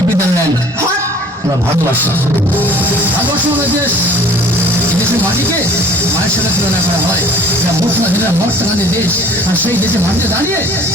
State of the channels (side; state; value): both; normal; correlation 0.51